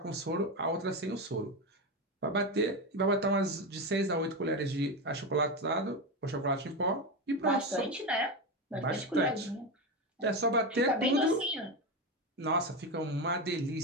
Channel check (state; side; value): normal; both; correlation 0.16